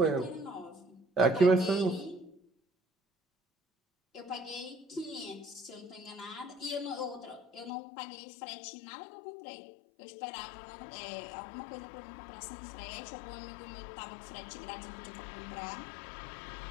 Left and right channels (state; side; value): drops out; right; at 7.7 s